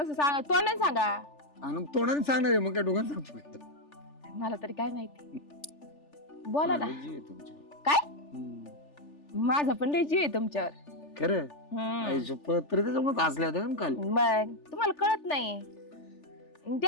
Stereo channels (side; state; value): right; late; 3.4 ms